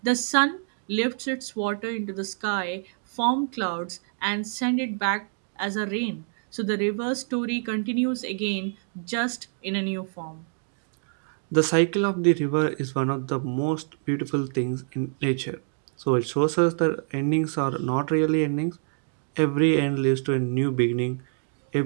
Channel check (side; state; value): left; silent; 61 dB below the other